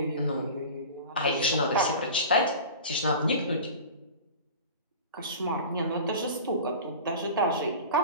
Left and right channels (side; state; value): both; inverted; correlation -0.35